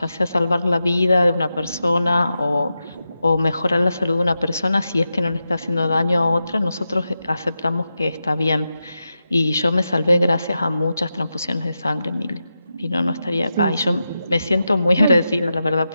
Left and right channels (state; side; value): inverted; both; correlation -0.89